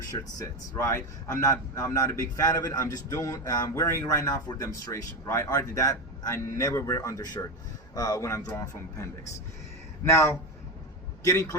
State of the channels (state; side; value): normal; both; correlation 0.17